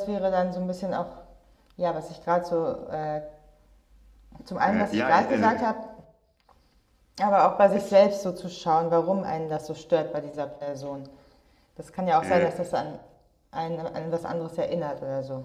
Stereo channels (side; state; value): both; identical; correlation 1.00